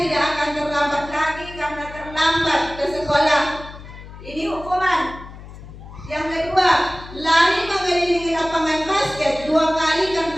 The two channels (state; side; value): noise; left; hum, 15 dB below the sound